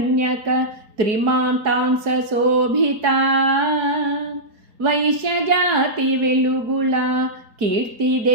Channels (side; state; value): left; late; 4.7 ms